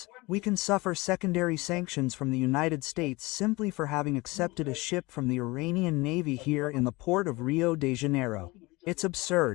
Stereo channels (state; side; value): quieter; right; 23.0 dB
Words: we can suffer secondary sanctions from the United States simply for having accepted a ship from the Iranian Navy here in the port of Rio de Janeiro. It's